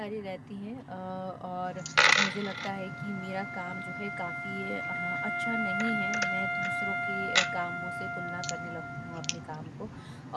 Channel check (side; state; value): both; identical; correlation 1.00